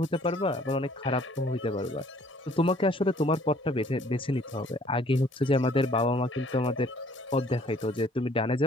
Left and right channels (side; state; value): both; normal; correlation 0.59